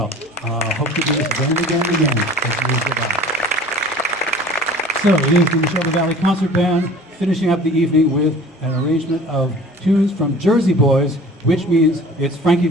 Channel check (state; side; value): normal; both; correlation 0.45